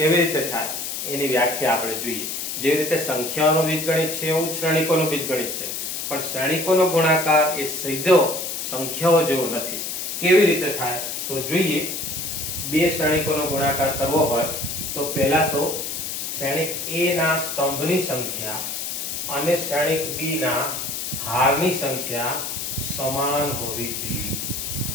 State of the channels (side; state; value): left; noise; hiss, 4 dB below the sound